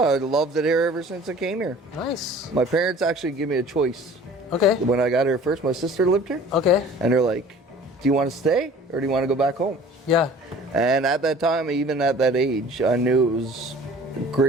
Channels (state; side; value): normal; both; correlation 0.47